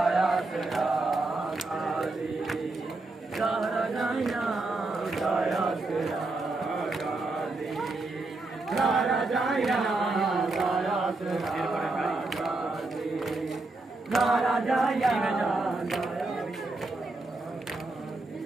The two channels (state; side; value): quieter; left; 3.2 dB